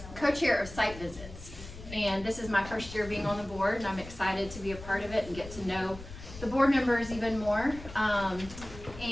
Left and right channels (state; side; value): noise; left; rumble, 14 dB below the sound